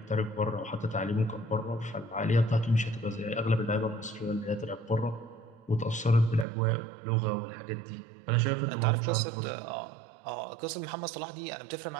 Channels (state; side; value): drops out; left; at 6.5 s